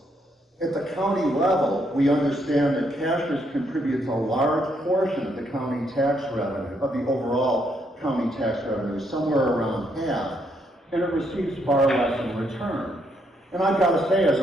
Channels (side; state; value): both; normal; correlation 0.74